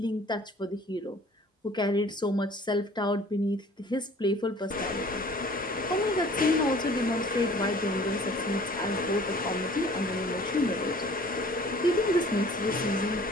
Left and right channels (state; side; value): normal; both; correlation 0.51